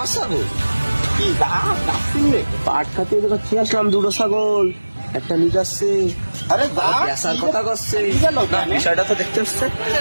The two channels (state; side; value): inverted; both; correlation -1.00